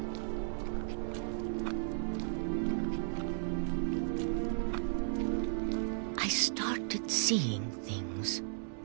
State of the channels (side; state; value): left; silent; digital silence